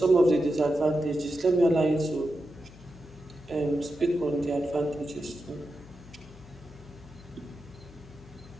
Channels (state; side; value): noise; left; hum, 20 dB below the sound